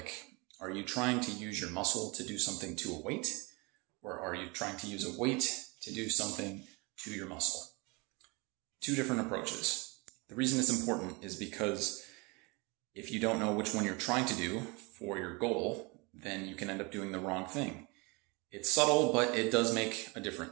are you trying to use your muscle to do something to a weight, or are you trying to use a weight to do something to your muscle? Two different approaches. The reason it's important is because if you don't know which one you're trying to do for your goal, then you can end up doing the wrong thing. It's subtle, but it does make a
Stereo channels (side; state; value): left; quieter; 27.9 dB